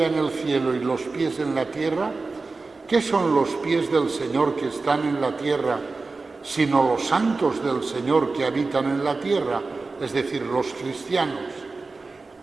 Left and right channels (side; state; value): left; quieter; 3.8 dB